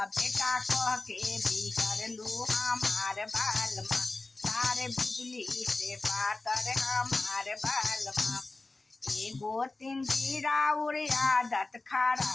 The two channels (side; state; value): right; quieter; 3.2 dB